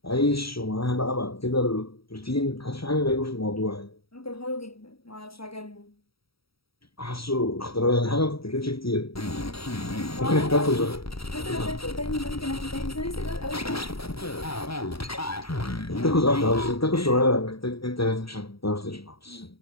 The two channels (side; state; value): right; late; 0.75 ms